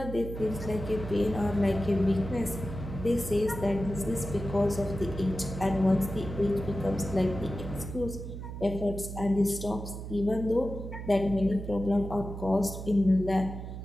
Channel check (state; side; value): noise; right; hum, 8 dB below the sound